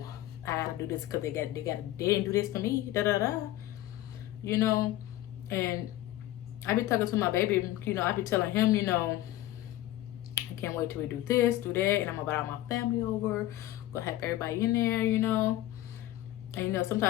I gotta do this because they didn't do this for me, you know. And I be talking to my baby, you know, I be telling him, you know, I can't wait till we do this, do that, and I'm gonna invite all my family over, gonna have everybody in there, you know. And you know,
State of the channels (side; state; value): right; quieter; 15.0 dB